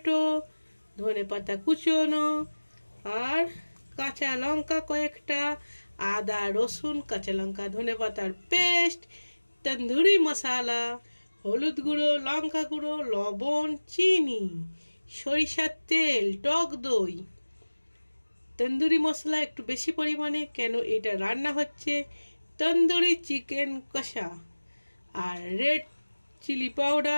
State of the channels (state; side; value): inverted; both; correlation -1.00